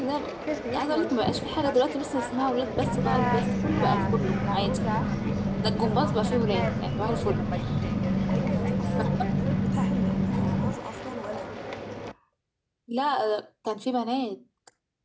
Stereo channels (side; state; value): both; identical; correlation 1.00